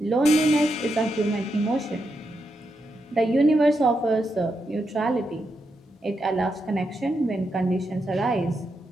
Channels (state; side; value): normal; both; correlation 0.84